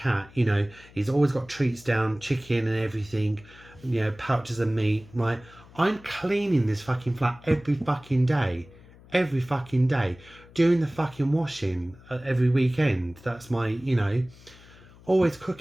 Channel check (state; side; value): noise; left; hum, 23 dB below the sound